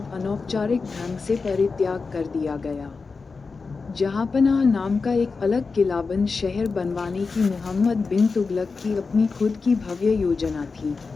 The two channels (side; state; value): right; quieter; 4.5 dB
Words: अनौपचारिक ढंग से परित्याग कर दिया गया। जहांपनाह नाम का एक अलग किलाबंद शहर बनवाने की मोहम्मद बिन तुगलक की अपनी खुद की भव्य योजना थी।